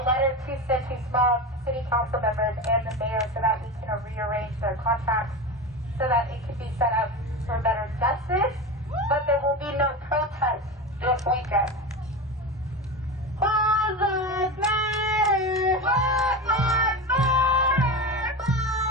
letter to send to small city council members and the mayor so that we can rearrange their contracts so that it can be set up for better justice. But there will be no protest this weekend. All lives matter. Black lives matter.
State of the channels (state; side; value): normal; both; correlation 0.24